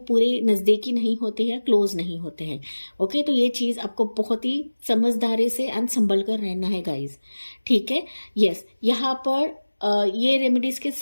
पूरे नजदीकी नहीं होते या क्लोज नहीं होते हैं। ओके। तो ये चीज आपको बहुत ही समझदारी से एंड संभल कर रहना है गाइज। ठीक है। यस। यहाँ पर ये रेमेडीज के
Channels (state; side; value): inverted; both; correlation -1.00